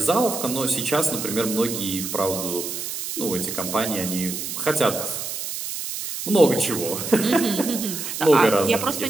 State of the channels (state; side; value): noise; right; hiss, 6 dB below the sound